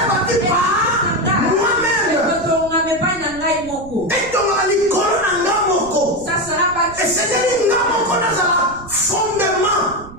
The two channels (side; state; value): right; noise; rumble, 18 dB below the sound